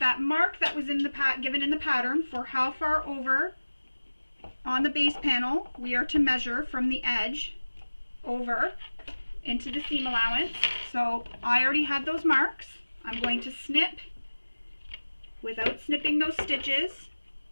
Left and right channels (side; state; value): both; inverted; correlation -1.00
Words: mark that was in the given in the pattern for how far over on the base panel we are to measure from the edge over into the seam allowance. So I already had those marks. I'm going to snip without snipping those stitches.